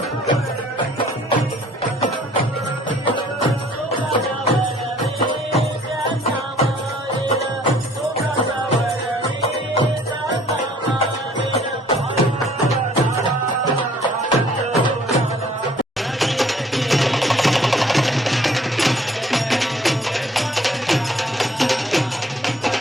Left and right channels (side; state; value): both; normal; correlation 0.58